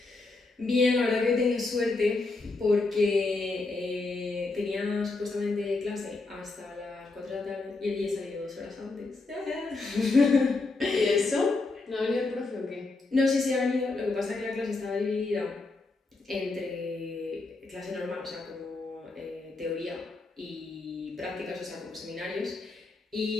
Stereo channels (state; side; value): quieter; right; 3.5 dB